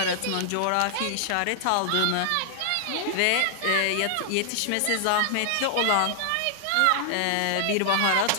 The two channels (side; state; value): both; different; correlation -0.01